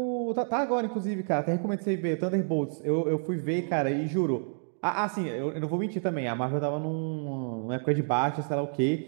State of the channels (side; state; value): left; silent; digital silence